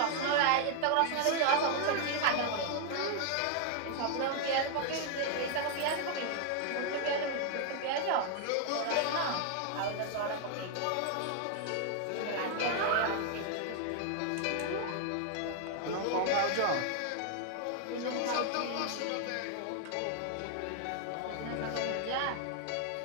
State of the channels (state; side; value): different; both; correlation 0.00